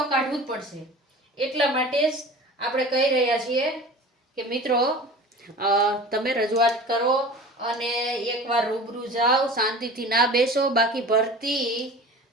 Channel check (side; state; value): both; normal; correlation 0.38